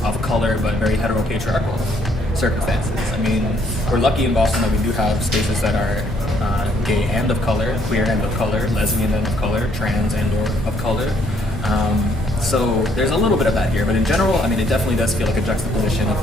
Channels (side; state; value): both; normal; correlation 0.67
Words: color but very heteropatriarchal circumstances? I mean, we're lucky in Boston that we do have spaces that are gay and of color, queer and of color, lesbian and of color, trans and or of color. So there's a little bit of that here, but in general, I mean, it definitely does feel like a juxtaposition of